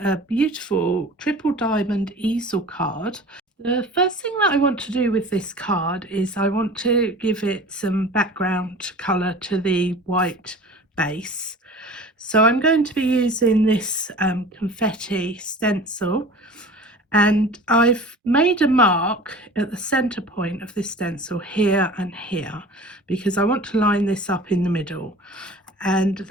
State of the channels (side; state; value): both; normal; correlation 0.41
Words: beautiful triple diamond easel card. The first thing that I want to do with this card is I want to give it some background colour to the white base. So I'm going to be using this confetti stencil, and I've made a mark at the center point of this stencil here and here because I want to line this up in the middle. And